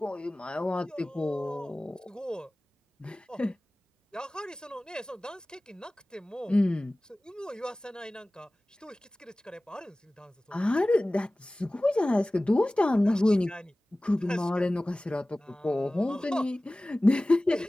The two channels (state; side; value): normal; both; correlation 0.98